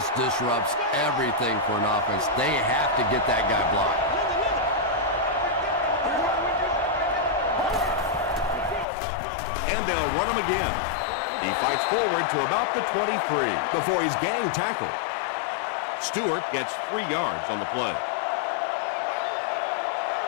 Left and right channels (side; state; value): right; drops out; at 8.8 s